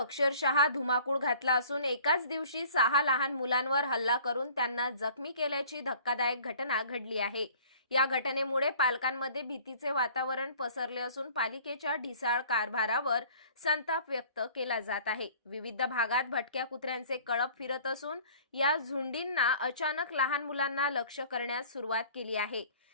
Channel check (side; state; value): both; inverted; correlation -0.50